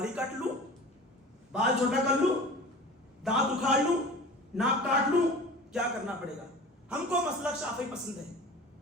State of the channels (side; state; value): both; normal; correlation 0.39